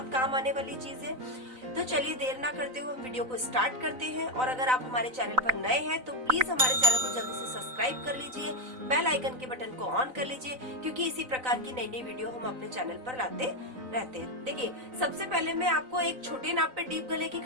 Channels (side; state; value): left; late; 3.9 ms